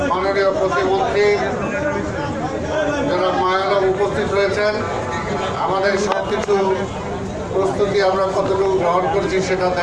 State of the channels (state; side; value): identical; both; correlation 1.00